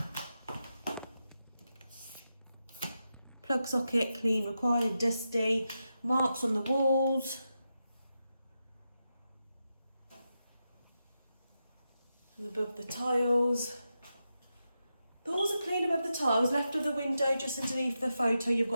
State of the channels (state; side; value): inverted; both; correlation -0.88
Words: Plug socket, clean required, dusty. Marks on the walls. And above the tiles. The walls are clean above the tiles. Left of the window, just underneath the photo, you've